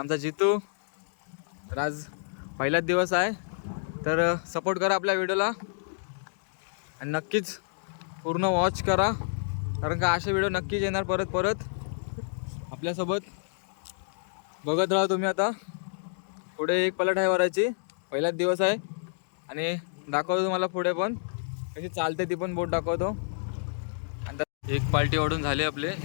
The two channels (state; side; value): silent; right; digital silence